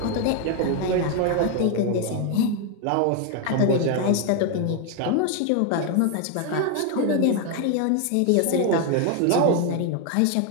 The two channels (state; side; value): different; both; correlation 0.01